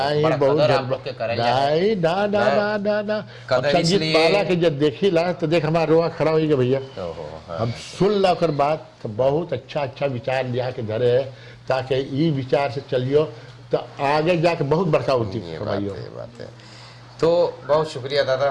नहीं बड़ा बहुत कदर आप लोग के करें जाए। नहीं ना ना ना ना ना अब कदर संगीत इसलिए- माला के जब देखी ला तो देख हमारा रोआ खड़ा हो गया भैया। ओहो, हाँ। हम सुन ला कर बात तो बहुत अच्छा अच्छा विचार लिया के धरे है, ताकि ई विचार से चलियो तो आगे जाके बहुत बड़का होती ये बात कमाइयो। है, ये बात है। तो बहुत शुक्रिया दादा,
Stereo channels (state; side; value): identical; both; correlation 1.00